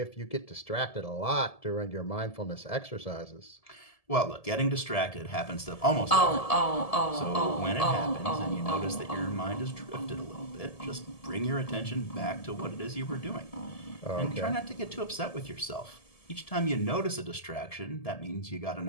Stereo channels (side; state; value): right; late; 1.7 ms